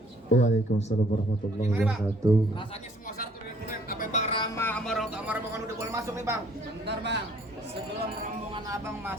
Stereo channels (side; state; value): both; normal; correlation 0.60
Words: Waalaikumsalam warahmatullahi wabarakatuh. Rasanya semua syarat udah dipenuhi. Apa Bang Rama sama orang tua sama rombongan udah boleh masuk nih bang? Bentar Bang, sebelum rombongan abang